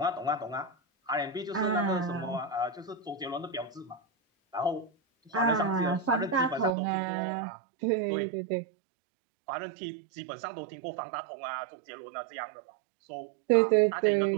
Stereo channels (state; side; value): drops out; left; at 6.8 s